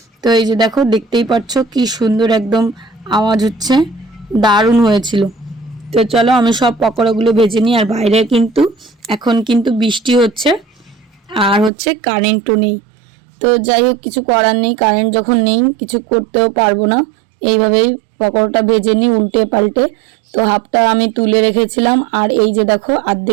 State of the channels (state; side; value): drops out; left; at 11.7 s